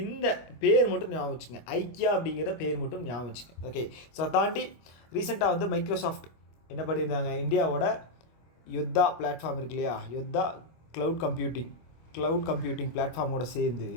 இந்த பேர் மட்டும் ஞாபகம் வச்சுங்க, ஐக்கியா அப்படிங்கிற பேர் மட்டும் ஞாபகம் வச்சுங்க. ஓகே, ஸோ அதை தாண்டி ரீசெண்டாக வந்து மைக்ரோசாஃப்ட் என்ன பண்ணியிருந்தாங்க, இந்தியாவோட யோத்தா பிளாட்ஃபார்ம் இருக்கு இல்லையா, யோத்தா க்ளவுட் கம்ப்யூட்டிங் பிளாட்ஃபார்மோட சேர்ந்து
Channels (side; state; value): right; late; 25 ms